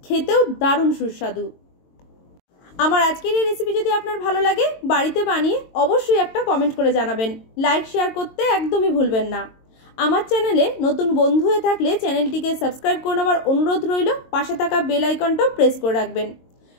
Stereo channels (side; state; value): right; late; 22 ms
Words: খেতেও দারুণ সুস্বাদু। আমার আজকের এই রেসিপি যদি আপনার ভালো লাগে বাড়িতে বানিয়ে অবশ্যই একটা কমেন্ট করে জানাবেন। লাইক শেয়ার করতে একদমই ভুলবেন না। আমার চ্যানেলে নতুন বন্ধু হয়ে থাকলে চ্যানেলটিকে সাবস্ক্রাইব করে নেওয়ার অনুরোধ রইল। পাশে থাকা বেল আইকনটাও প্রেস করে রাখবেন।